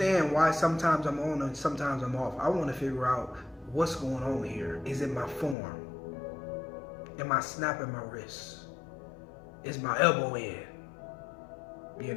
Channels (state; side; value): drops out; right; at 5.6 s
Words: why sometimes I'm on and sometimes I'm off. I want to figure out what's going on here. Is it my form? Am I snapping my wrist? Is my elbow in?